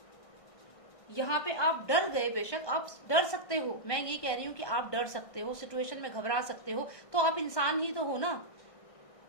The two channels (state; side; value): late; right; 1.6 ms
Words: यहाँ पे आप डर गए, बेशक आप डर सकते हो, मैं ये कह रही हूँ कि आप डर सकते हो, सिचुएशन में घबरा सकते हो, तो आप इंसान ही तो हो ना,